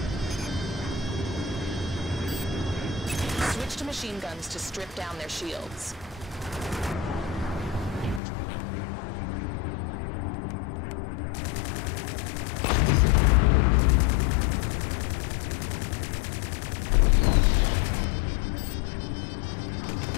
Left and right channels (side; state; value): right; drops out; at 8.2 s